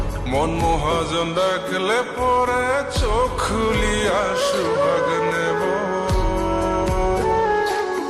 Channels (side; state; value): both; identical; correlation 1.00